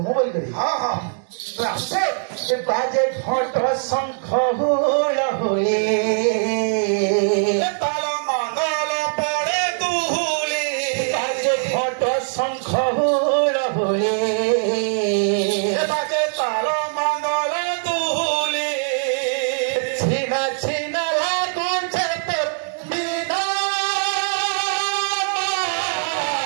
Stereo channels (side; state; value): left; silent; digital silence